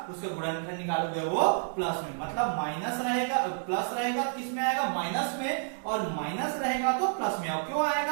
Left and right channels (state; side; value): silent; left; 58 dB below the other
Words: उसका गुणनखंड निकालोगे वो प्लस में। मतलब माइनस रहेगा, प्लस रहेगा तो किस में आएगा? माइनस में, और माइनस रहेगा तो प्लस में। क्यों